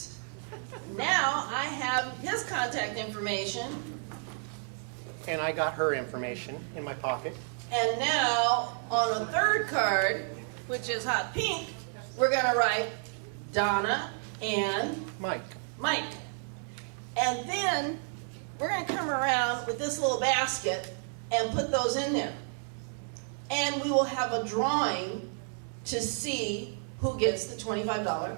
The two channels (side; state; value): left; silent; 57 dB below the other